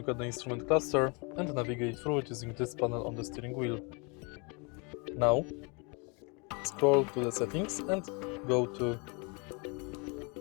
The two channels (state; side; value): quieter; right; 32.0 dB